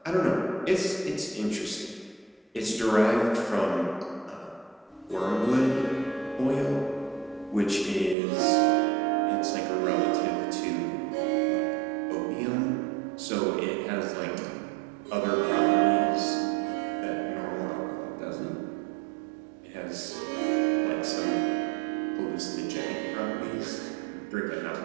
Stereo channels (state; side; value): drops out; left; at 8.2 s